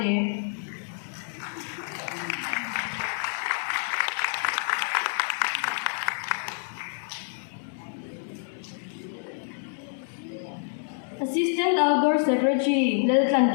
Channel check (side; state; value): right; silent; 60 dB below the other